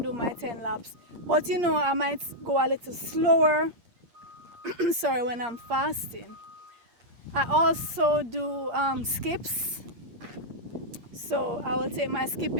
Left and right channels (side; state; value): left; late; 8.6 ms